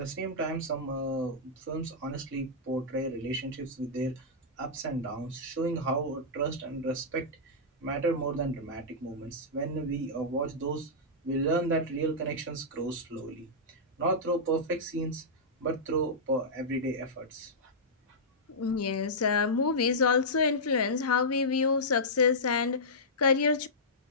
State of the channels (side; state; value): both; normal; correlation -0.12